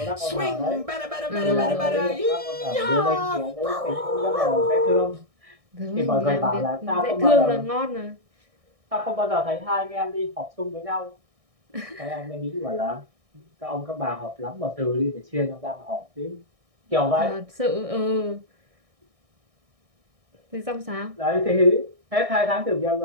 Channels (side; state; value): left; late; 1.6 ms